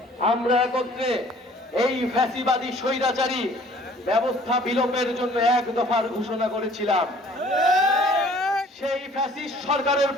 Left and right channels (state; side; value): normal; both; correlation 0.54